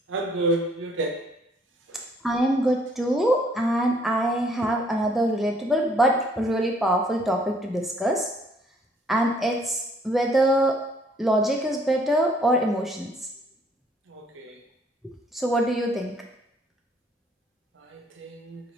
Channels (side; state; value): both; normal; correlation 0.64